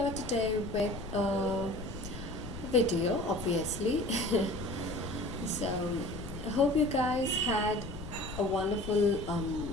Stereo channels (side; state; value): left; noise; rumble, 11 dB below the sound